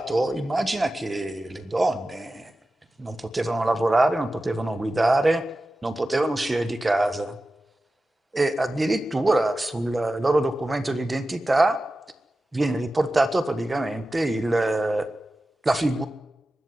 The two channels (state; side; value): normal; both; correlation 0.94